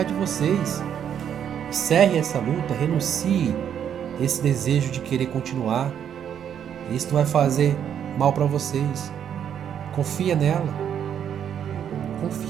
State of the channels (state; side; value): quieter; left; 8.9 dB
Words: de vocês. Encerre essa luta, renuncie esse desejo de querer continuar. Isso não vai fazer mal para vocês. Confia nela.